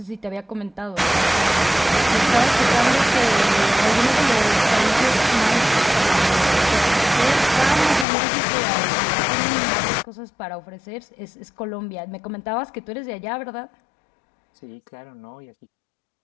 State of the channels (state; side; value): drops out; right; at 8.1 s